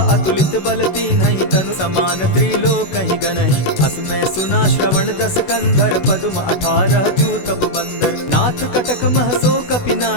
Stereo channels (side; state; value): right; late; 16 ms